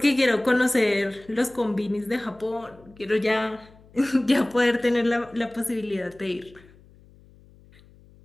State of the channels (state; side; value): noise; left; hum, 26 dB below the sound